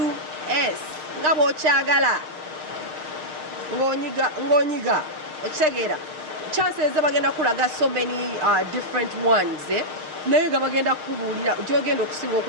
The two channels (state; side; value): late; left; 6.5 ms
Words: Ngabo chagala. Ngonyiga. Ochegera. Chances bagenda kulaga so many different ones. Naye bagenda kubulira jogenda okusinga